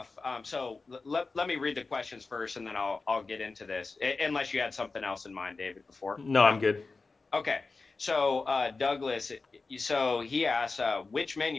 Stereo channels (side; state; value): right; quieter; 4.0 dB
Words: so let me read the questions first, and then I'll get into this, unless you had something else in mind, David, before. No, I'm good. Okay. So Douglas, so he asks, which